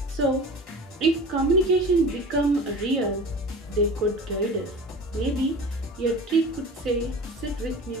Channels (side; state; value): both; normal; correlation 0.36